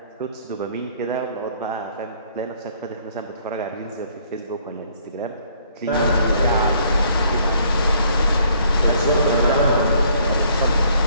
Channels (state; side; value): inverted; both; correlation -0.63